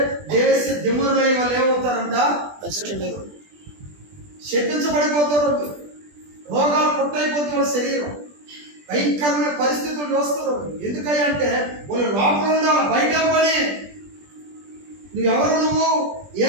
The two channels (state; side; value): late; left; 20 ms